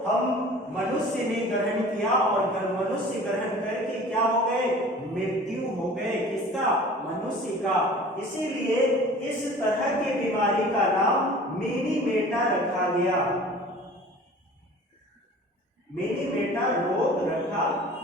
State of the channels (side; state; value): both; normal; correlation 0.44